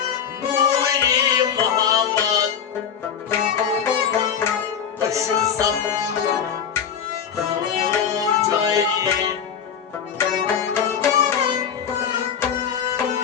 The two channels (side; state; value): right; quieter; 7.8 dB